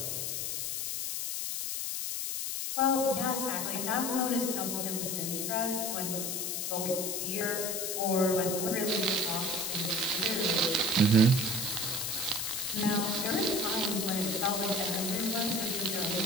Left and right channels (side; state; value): left; noise; hiss, 2 dB below the sound